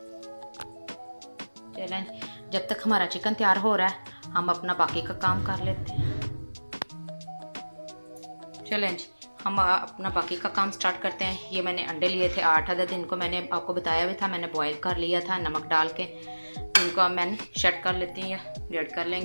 चलें, जब तक हमारा चिकन तैयार हो रहा है हम अपना बाकी का काम कर लेते हैं। चलें जी, हम अपना बाकी का काम स्टार्ट करते हैं। ये मैंने अंडे लिए थे 8 अदद, इनको मैंने आपको बताया भी था, मैंने बॉईल कर लिया था नमक डाल के। इनको अब मैंने शट कर लेती हूँ या ग्रेट कर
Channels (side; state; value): both; inverted; correlation -1.00